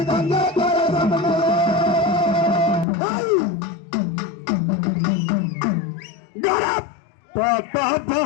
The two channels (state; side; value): drops out; right; at 2.9 s